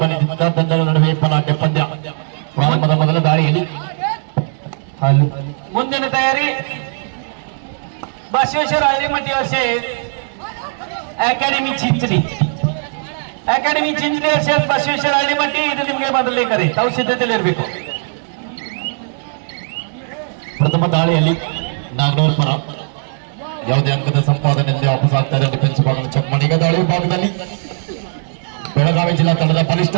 ತಂಡಗಳ ನಡುವೆ ಪಲಾಟೆ ಪಂದ್ಯ. ಪ್ರಾರಂಭದ ಮೊದಲ ದಾಳಿಯಲ್ಲಿ ಮುಂದಿನ ತಯಾರಿ बसवेश्वर हळदीमठी असे अकॅडमी चिंचणी असेल बसवेश्वर हळदीमठी ಇದು ನಿಮಗೆ ಬದಲೇಕರಿ ತಾವು ಸಿದ್ಧತೆಯಲ್ಲಿ ಇರಬೇಕು. ಪ್ರಥಮ ದಾಳಿಯಲ್ಲಿ ನಾಗನೂರ್ ಪರ ಯಾವುದೇ ಅಂಕದ ಸಂಪಾದನೆಯಲ್ಲಿ ವಾಪಸ್ ಆಗ್ತಾ ಇದೆ. ಡಿಫೆನ್ಸ್ ಭಾಗದ ಚಮ್ಮಣಿಗ ದಾಳಿ ಭಾಗದಲ್ಲಿ ಬೆಳಗಾವಿ ಜಿಲ್ಲಾ ತಂಡದ ಬಲಿಷ್ಠ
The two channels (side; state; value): left; silent; 68 dB below the other